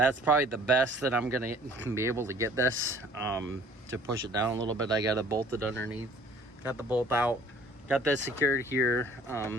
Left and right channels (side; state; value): both; normal; correlation 0.53